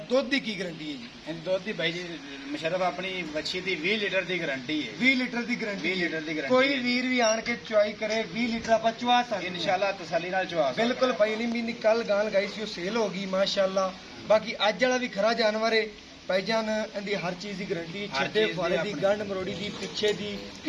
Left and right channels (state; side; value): identical; both; correlation 1.00